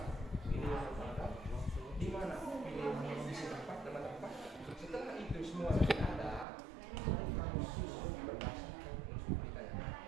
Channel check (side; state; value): left; drops out; at 6.5 s